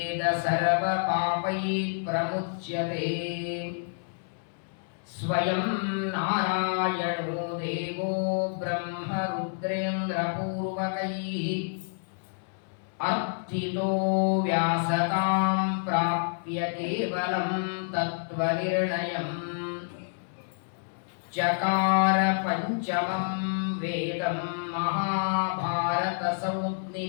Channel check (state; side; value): silent; right; 59 dB below the other